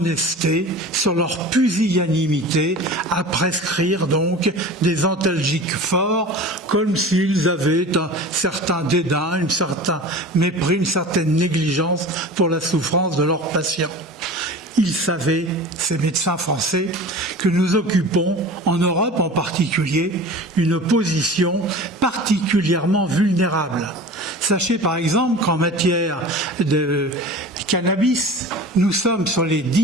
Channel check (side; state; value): both; normal; correlation 0.37